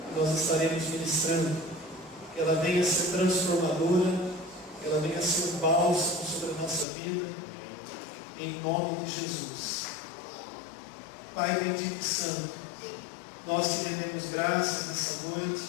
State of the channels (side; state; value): right; drops out; at 6.9 s